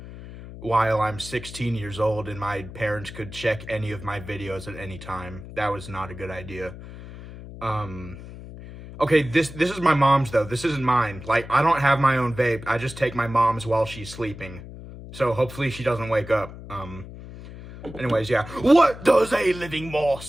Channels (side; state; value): left; noise; hum, 14 dB below the sound